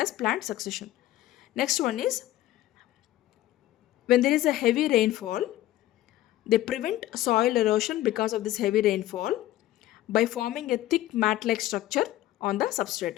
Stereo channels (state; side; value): quieter; right; 14.7 dB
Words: plant succession. Next one is, when there is a heavy rainfall, they prevent soil erosion because of this heavy rainfall by forming a thick mat-like structure on the